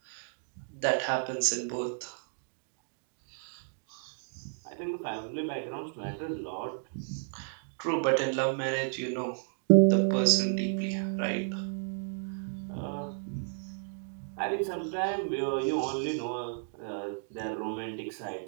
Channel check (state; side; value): silent; left; digital silence